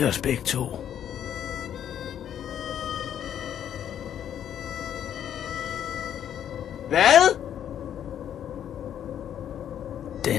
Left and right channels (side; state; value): right; quieter; 9.8 dB